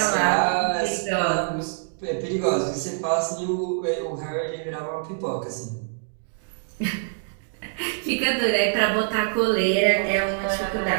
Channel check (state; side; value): silent; left; digital silence